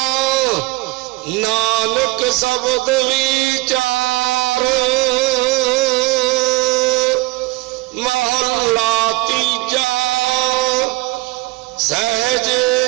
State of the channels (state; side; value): quieter; left; 21.1 dB